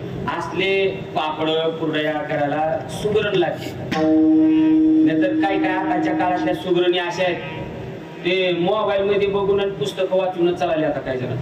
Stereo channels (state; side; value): identical; both; correlation 1.00